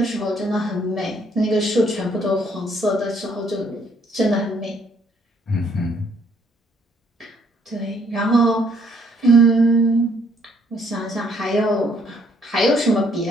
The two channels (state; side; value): normal; both; correlation 0.66